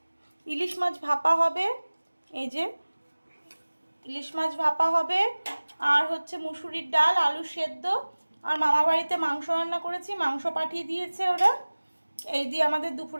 মাছ ভাপা হবে। এই যে ইলিশ মাছ ভাপা হবে, আর হচ্ছে মুসুরির ডাল, আলু সেদ্ধ, আর মামা বাড়িতে মাংস রান্না করেছি, মাংস পাঠিয়ে দিয়েছে ওরা। এই দিয়ে আমাদের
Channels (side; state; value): both; inverted; correlation -1.00